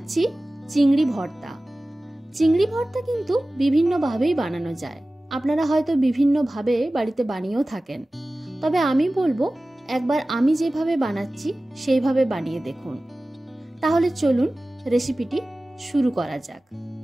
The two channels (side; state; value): both; normal; correlation 0.97